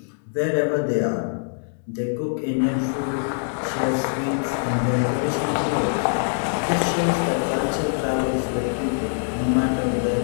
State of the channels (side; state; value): right; silent; digital silence